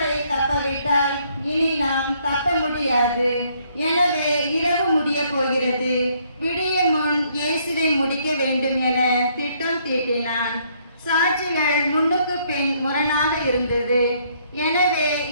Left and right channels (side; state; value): both; inverted; correlation -0.68